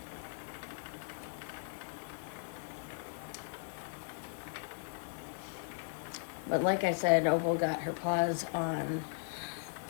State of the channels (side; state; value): right; silent; digital silence